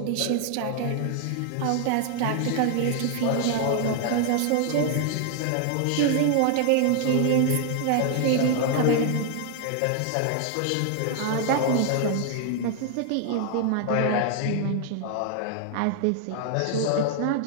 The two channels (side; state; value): both; different; correlation 0.00